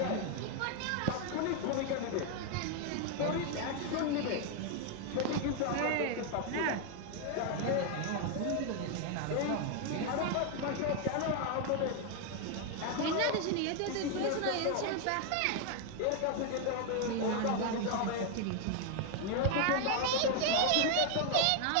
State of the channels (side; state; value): both; different; correlation 0.01